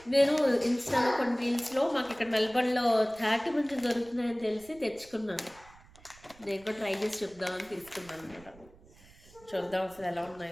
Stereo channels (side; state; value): right; noise; rumble, 24 dB below the sound